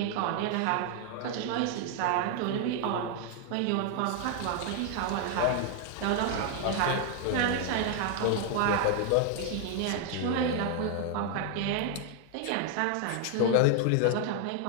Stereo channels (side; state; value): both; different; correlation 0.00